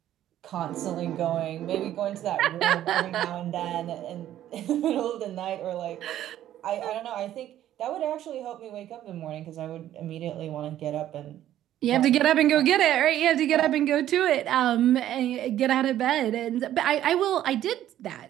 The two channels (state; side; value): quieter; left; 12.2 dB